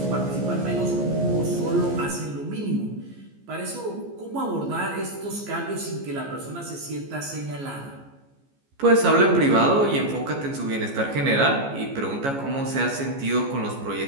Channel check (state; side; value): late; left; 14 ms